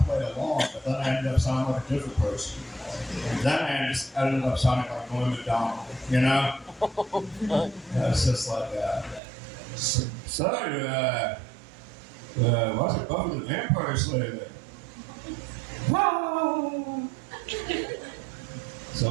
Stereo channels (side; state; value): left; drops out; at 9.2 s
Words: play along, but then I ended up sounding like a different person. Then I just ended up sounding like William McDonald, you know? It's just like, what's it, Buffy the Vampire Slayer?